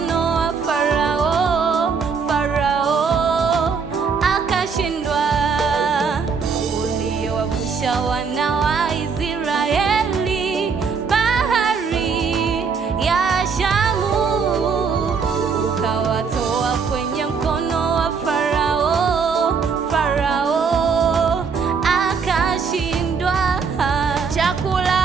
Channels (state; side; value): quieter; left; 5.6 dB